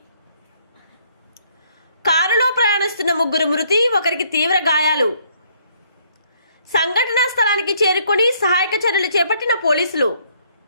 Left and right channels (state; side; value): inverted; both; correlation -0.66